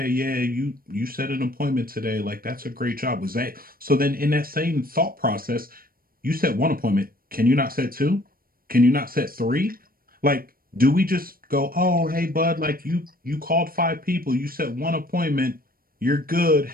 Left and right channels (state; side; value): late; left; 0.42 ms